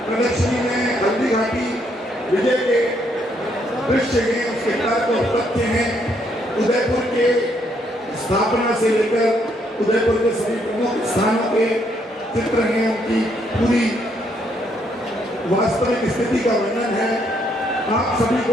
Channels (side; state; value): both; normal; correlation 0.72